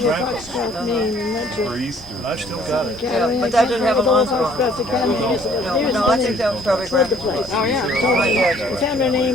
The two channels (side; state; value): both; normal; correlation 0.60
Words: Grandma's, Foxcroft, Maine, and went to and I've still got it. Academy. but that didn't have a Old month on it. Foxcroft Academy. No, I think that was probably Grandma's. Oh, yeah. We found her